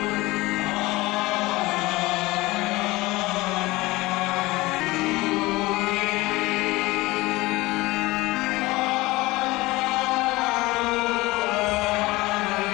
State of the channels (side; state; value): right; quieter; 20.7 dB